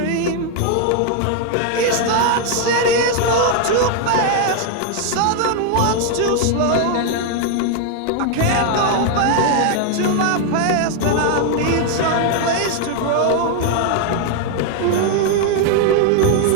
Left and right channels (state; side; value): different; both; correlation 0.00